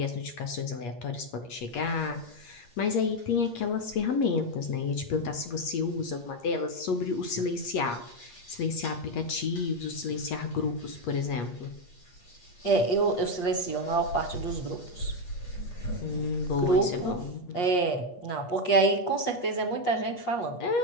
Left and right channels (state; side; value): late; right; 8.4 ms